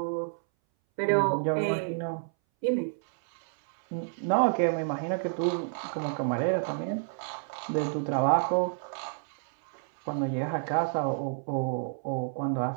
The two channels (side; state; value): left; silent; 58 dB below the other